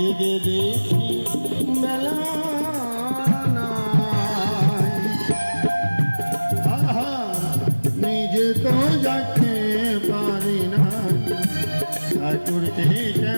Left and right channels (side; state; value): both; inverted; correlation -1.00